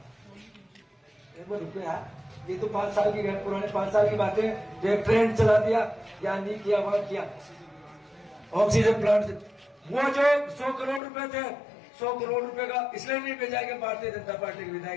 रुपया ये तो 5 साल की पुराने 5 साल की बातें, जो एक ट्रेन चला दिया या नहीं किया वहां किया। ऑक्सीजन प्लांट वो जो 100 करोड़ रुपए थे, 100 करोड़ रुपए का इसलिए नहीं भेजा कि भारतीय जनता पार्टी के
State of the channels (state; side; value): drops out; right; at 11.0 s